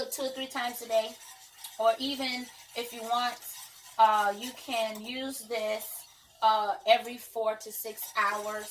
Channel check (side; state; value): both; identical; correlation 1.00